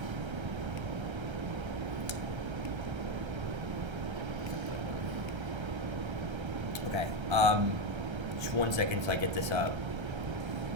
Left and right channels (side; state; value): left; late; 1.3 ms